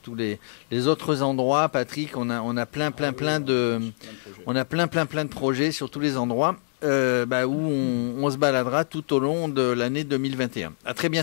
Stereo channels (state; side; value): silent; right; digital silence